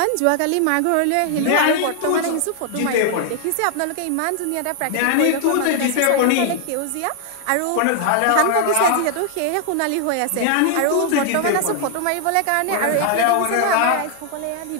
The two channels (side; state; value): both; different; correlation 0.00